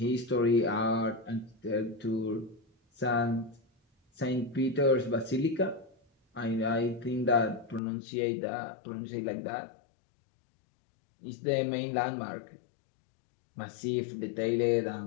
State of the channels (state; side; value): drops out; right; at 7.8 s